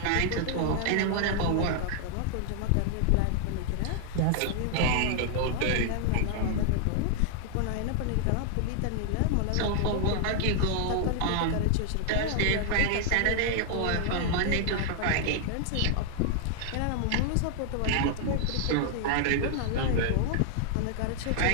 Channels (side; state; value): both; different; correlation 0.00